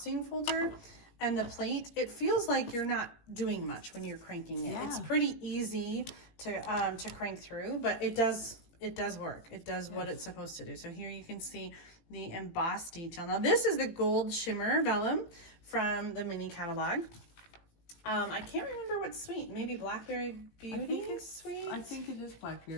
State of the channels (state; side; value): late; right; 18 ms